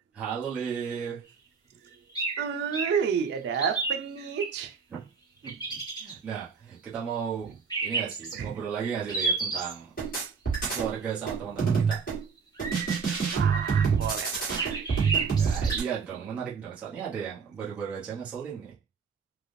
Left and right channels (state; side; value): quieter; left; 5.7 dB